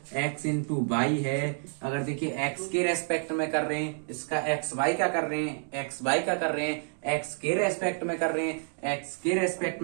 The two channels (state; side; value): silent; left; 58 dB below the other